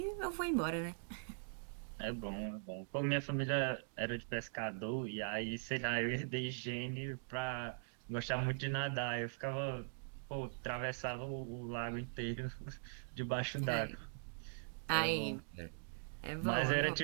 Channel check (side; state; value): left; silent; digital silence